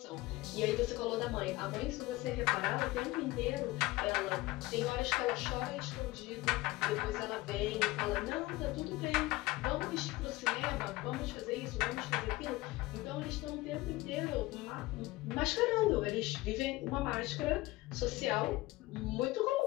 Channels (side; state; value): right; quieter; 19.5 dB